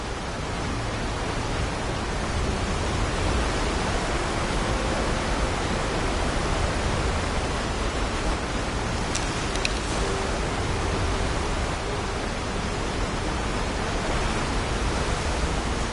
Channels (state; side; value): identical; both; correlation 1.00